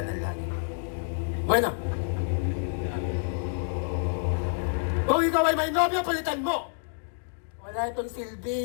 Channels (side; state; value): right; silent; digital silence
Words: ng langit. Bueno! Kung ikaw ay may nobyo, palitan mo! Wala itong